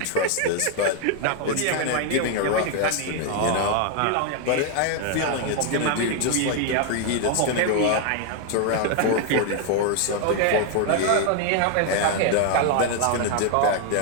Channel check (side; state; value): both; different; correlation 0.00